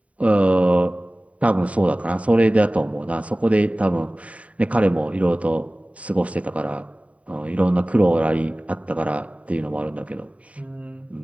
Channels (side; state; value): left; late; 0.067 ms